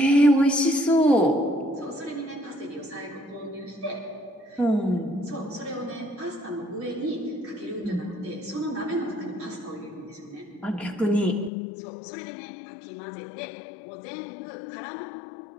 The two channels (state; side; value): drops out; right; at 11.5 s